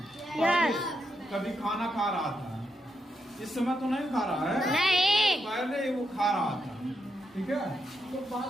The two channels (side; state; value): both; normal; correlation 0.82